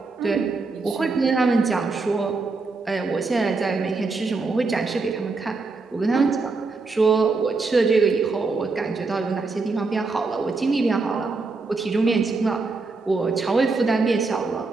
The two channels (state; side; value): quieter; left; 4.0 dB